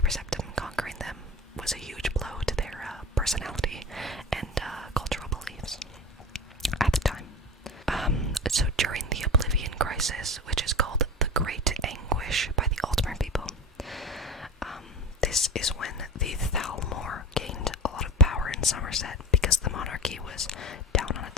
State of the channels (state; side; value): normal; both; correlation 0.30